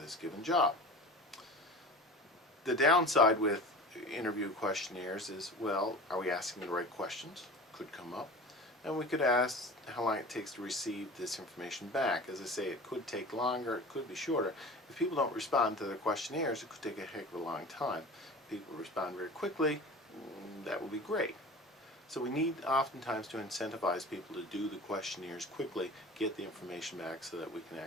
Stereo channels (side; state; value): both; normal; correlation 0.36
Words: given job. The downside with interview questionnaires is, well, are we asking the right questions? Could come up. And we could ask how long it takes to receive this information back. As I say, it could take longer, it could be shorter. If people don't respond to their questionnaires, it could take a heck of a long time. If people respond very quickly, that would be great. So we need oftentimes to incentivize people to do the questionnaires quickly, get the information back so that we can